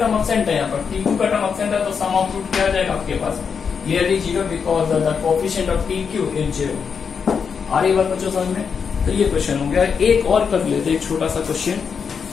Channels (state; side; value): quieter; right; 6.3 dB